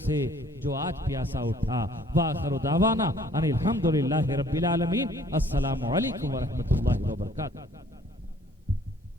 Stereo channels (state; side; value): normal; both; correlation 0.58